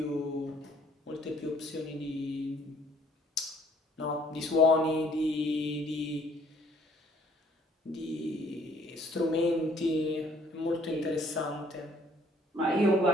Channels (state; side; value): normal; both; correlation 0.60